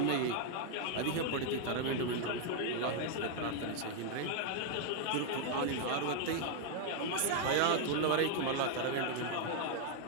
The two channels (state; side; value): different; both; correlation 0.00